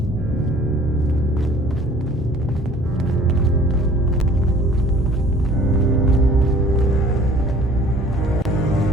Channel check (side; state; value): both; normal; correlation 0.51